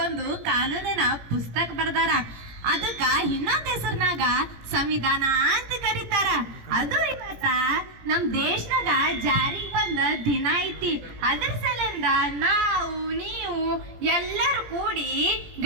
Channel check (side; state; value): left; late; 17 ms